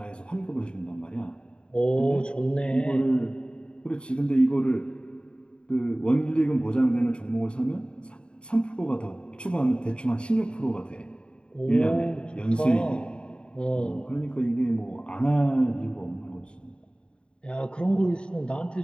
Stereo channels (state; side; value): late; right; 0.052 ms